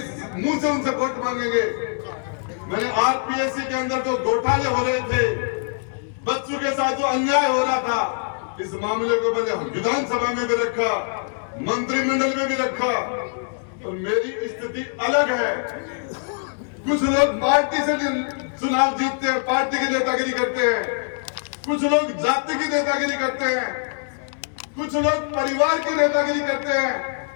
मुंह से उनसे वोट मांगेंगे। मैंने आरपीएससी के अंदर जो घोटाले हो रहे थे, बच्चों के साथ जो अन्याय हो रहा था, इस मामले को मैंने विधानसभा में भी रखा, मंत्रिमंडल में भी रखा। और मेरी स्थिति अलग है। कुछ लोग पार्टी से चुनाव जीतते हैं, पार्टी की नेतागिरी करते हैं, कुछ लोग जाति की नेतागिरी करते हैं, कुछ लोग परिवार की नेतागिरी करते हैं।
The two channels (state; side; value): silent; right; digital silence